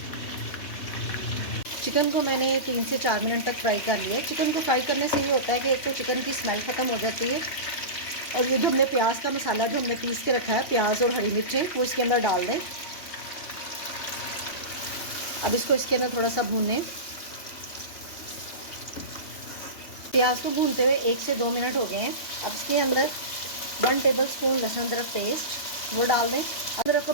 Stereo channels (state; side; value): late; right; 3.1 ms